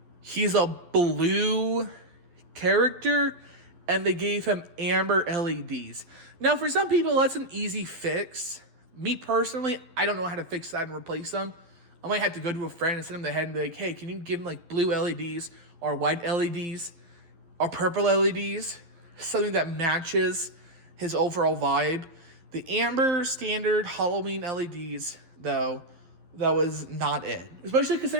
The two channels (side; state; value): left; late; 11 ms